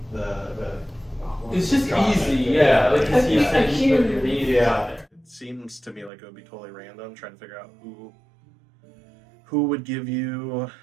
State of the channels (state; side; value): drops out; left; at 6.1 s